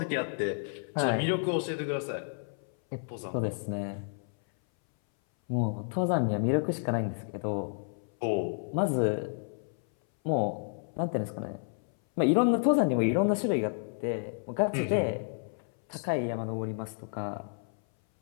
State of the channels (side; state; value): right; silent; 57 dB below the other